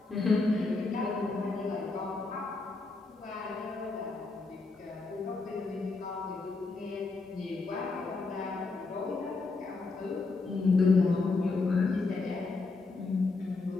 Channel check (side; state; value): right; quieter; 3.8 dB